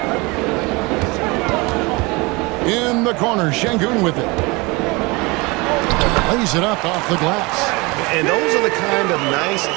In the corner, Şengün with it. Lays it up off the glass. And those are the kind of nice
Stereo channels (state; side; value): quieter; left; 25.5 dB